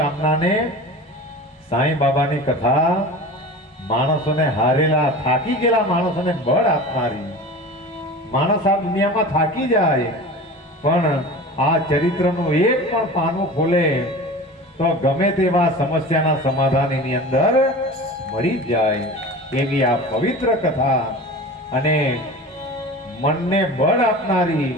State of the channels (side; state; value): both; normal; correlation 0.35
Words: સાંઈ બાબાની કથા માણસોને હારેલા થાકી ગયેલા માણસોને બળ આપનારી. માણસ આ દુનિયામાં થાકી જાય, પણ આ ચરિત્રનું એક પણ પાનું ખોલે તો ગમે તેવા સમસ્યાના સમાધાન એની અંદર મળી જાય. એવી આ પવિત્ર કથા અને મનને બળ આપનારી,